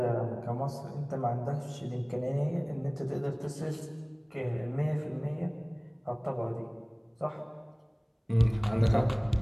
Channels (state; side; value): identical; both; correlation 1.00